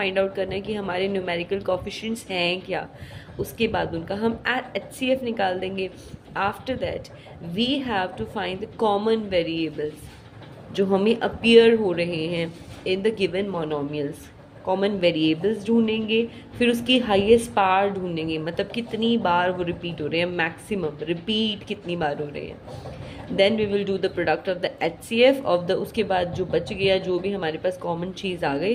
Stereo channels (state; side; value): identical; both; correlation 1.00